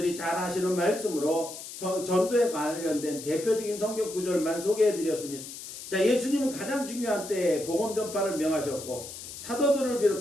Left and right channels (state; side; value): noise; left; hiss, 11 dB below the sound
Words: 잘 아시는 말씀으로 전도에 관련된 대표적인 성경 구절만 소개해 드렸습니다. 자, 예수님은 가장 중요한 때에 복음 전파를 명하셨고 사도들을